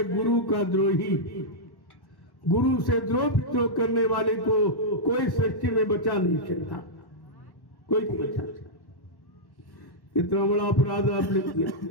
गुरु का द्रोही। गुरु से द्रोह विद्रोह करने वाले को कोई सृष्टि में बचा नहीं सकता, कोई नहीं बचा सकता। इतना बड़ा अपराध आपने किया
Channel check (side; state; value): right; late; 1.1 ms